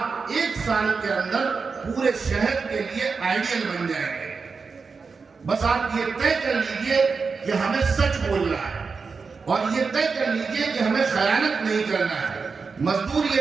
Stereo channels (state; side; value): quieter; left; 4.9 dB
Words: ایک سال کے اندر پورے شہر کے لیے آئیڈیل بن جائیں گے۔ بس آپ یہ طے کر لیجئے کہ ہمیں سچ بولنا ہے، اور یہ طے کر لیجئے کہ ہمیں خیانت نہیں کرنا ہے۔ مزدور